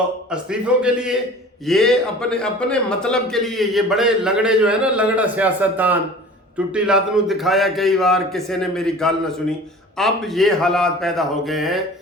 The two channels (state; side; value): normal; both; correlation 0.42